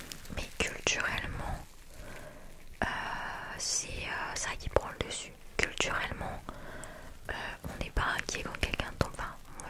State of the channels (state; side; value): identical; both; correlation 1.00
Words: Mais culturellement, c'est ça qui prend le dessus. Culturellement, on n'est pas inquiet quand quelqu'un tombe. Enfin,